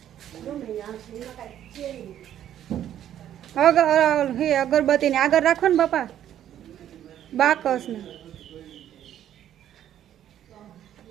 અગરબત્તી ને આગળ રાખો ને બાપા બાકસ ને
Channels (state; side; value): quieter; left; 11.0 dB